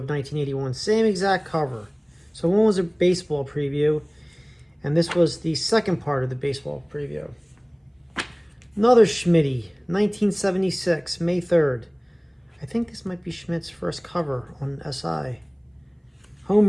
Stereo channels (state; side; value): identical; both; correlation 1.00